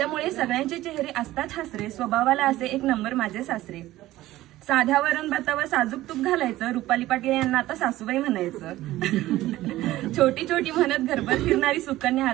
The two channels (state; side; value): quieter; left; 15.9 dB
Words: सगळ्यांचे चेहरे असतात हसरे, स्वभावाला असे एक नंबर माझे सासरे. साध्या वरण भातावर साजूक तूप घालायचं, रुपाली पाटील यांना आता सासूबाई म्हणायचं. छोटी छोटी म्हणत घरभर फिरणारी सुकन्या